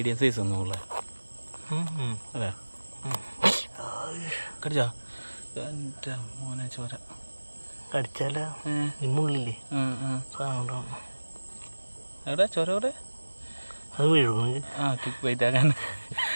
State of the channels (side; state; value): both; inverted; correlation -1.00